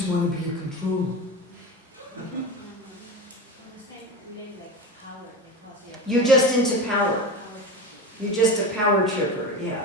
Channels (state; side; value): normal; both; correlation 0.26